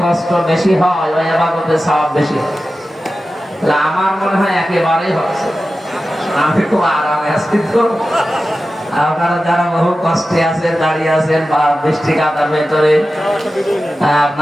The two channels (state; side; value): normal; both; correlation 0.94